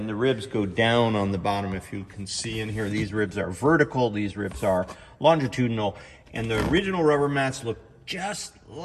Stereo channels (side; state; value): both; identical; correlation 1.00